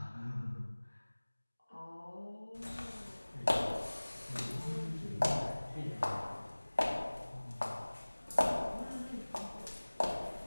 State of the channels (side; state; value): both; inverted; correlation -1.00